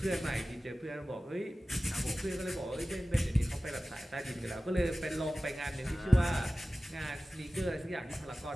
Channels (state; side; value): normal; both; correlation 0.96